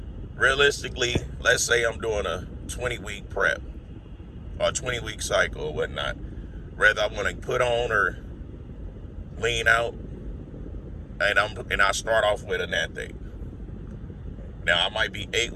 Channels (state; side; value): identical; both; correlation 1.00